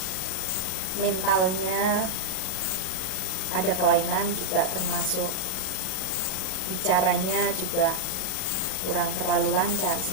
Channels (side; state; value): right; late; 38 ms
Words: Mentalnya ada kelainan juga, termasuk bicaranya juga kurang terlalu lancar,